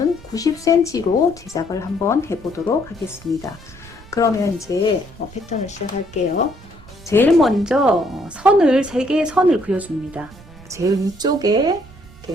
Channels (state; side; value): noise; right; rumble, 21 dB below the sound